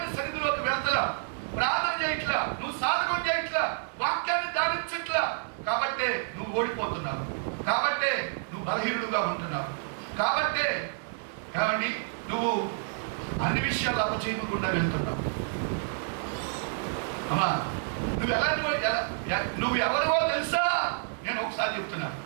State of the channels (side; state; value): left; silent; digital silence